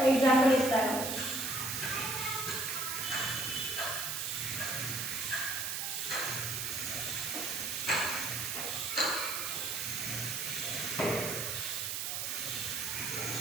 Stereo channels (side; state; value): right; noise; hiss, 2 dB below the sound